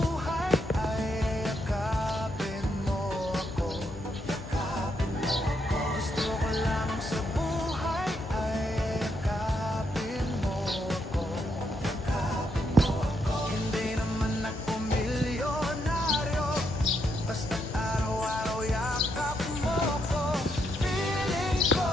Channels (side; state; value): both; normal; correlation 0.78